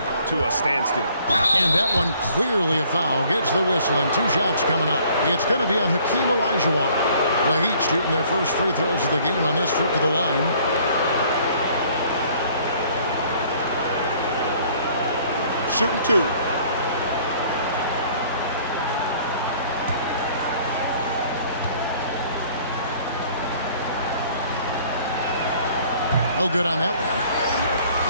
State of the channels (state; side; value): inverted; both; correlation -0.57